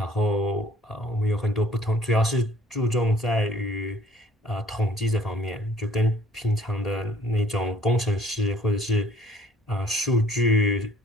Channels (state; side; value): normal; both; correlation 0.57